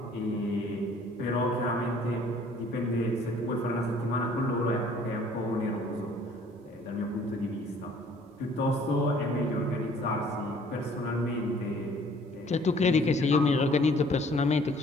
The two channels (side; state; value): both; normal; correlation 0.56